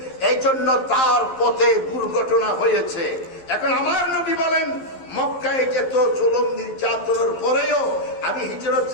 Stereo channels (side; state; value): right; late; 11 ms